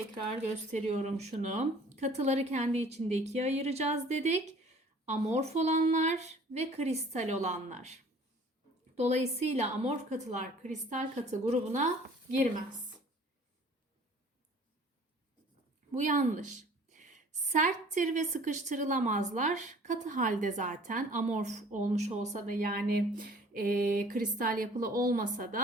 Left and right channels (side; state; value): both; normal; correlation 0.51